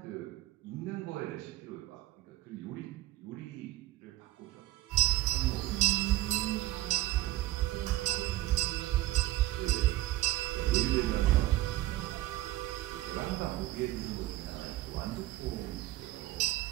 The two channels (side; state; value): left; quieter; 16.1 dB